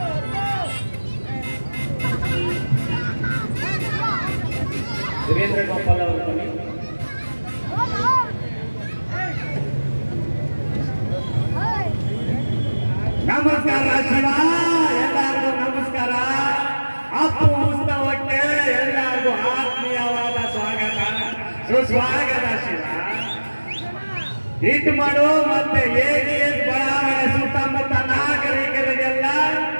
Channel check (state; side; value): inverted; both; correlation -1.00